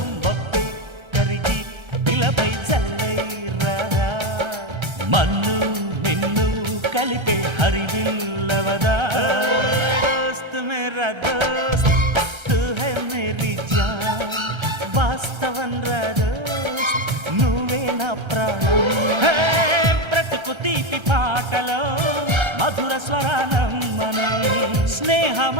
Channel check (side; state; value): left; late; 1.3 ms